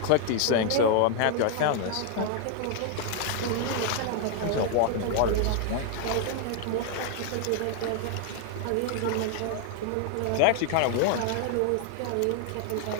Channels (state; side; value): different; both; correlation 0.00